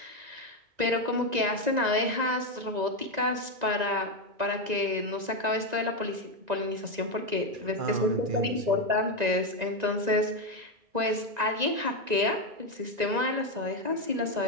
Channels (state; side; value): late; left; 1.9 ms